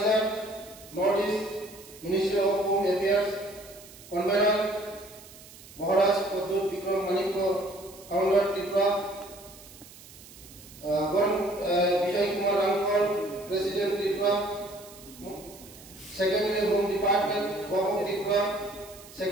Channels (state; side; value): noise; right; hiss, 19 dB below the sound